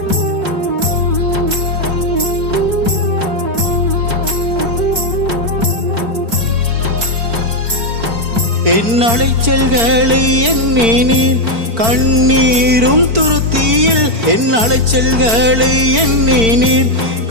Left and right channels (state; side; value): late; left; 4.4 ms